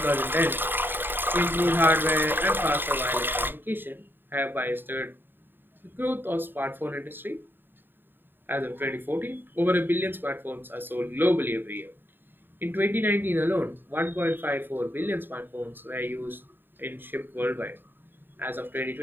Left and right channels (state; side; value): late; left; 0.095 ms